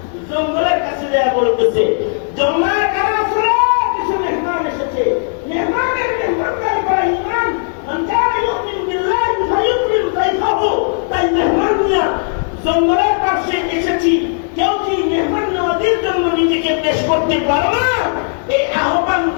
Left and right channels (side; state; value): right; silent; 69 dB below the other